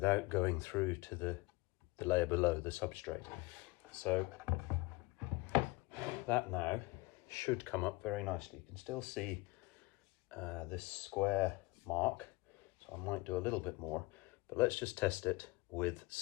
going through to the layer below, the substrate. So that now should come up very nicely. You can still see this square mark, so I might do a little bit more, but let's just test it with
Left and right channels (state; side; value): quieter; right; 22.5 dB